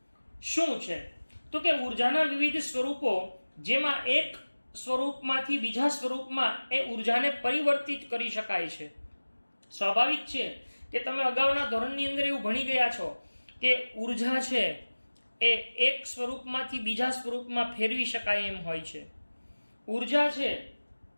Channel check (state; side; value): inverted; both; correlation -1.00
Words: શું છે? તો કે ઉર્જાના વિવિધ સ્વરૂપો જેમાં એક સ્વરૂપમાંથી બીજા સ્વરૂપમાં એ ઉર્જાને પરિવર્તિત કરી શકાય છે. સ્વાભાવિક છે કે તમે અગાઉના ધોરણની અંદર એવું ભણી ગયા છો કે ઉર્જા છે એ એક સ્વરૂપમાંથી બીજા સ્વરૂપમાં ફેરવી શકાય એમ હોય છે. ઉર્જા છે